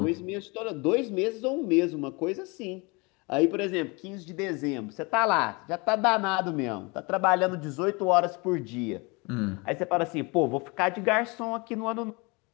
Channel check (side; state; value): right; quieter; 27.8 dB